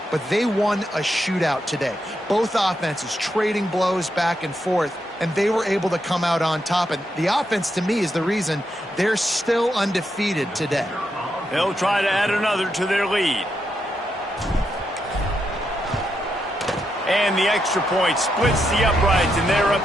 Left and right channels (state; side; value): normal; both; correlation 0.82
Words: but they won a shootout today. Both offenses trading blows back and forth, and they were able to come out on top. And the offense, to me, is the reason they're still undefeated today. They'll try to add another to their lead. And the extra point splits the uprights, and they're